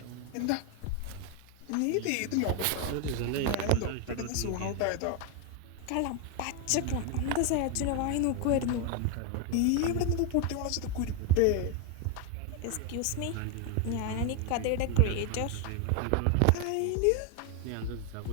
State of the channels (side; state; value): both; different; correlation 0.01